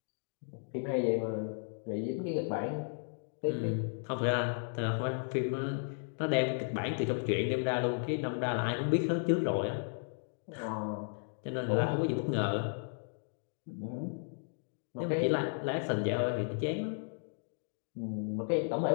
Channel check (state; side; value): silent; right; digital silence